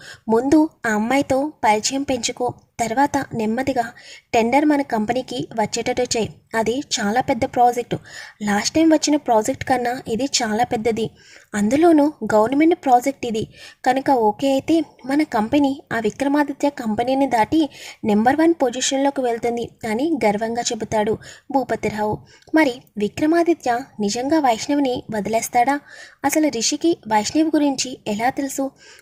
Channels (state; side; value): identical; both; correlation 1.00